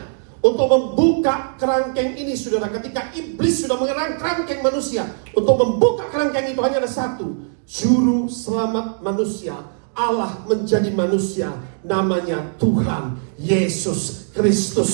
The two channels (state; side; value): silent; left; digital silence